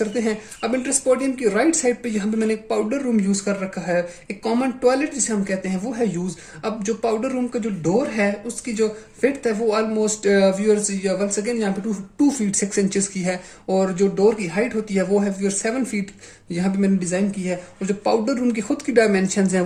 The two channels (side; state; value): both; identical; correlation 1.00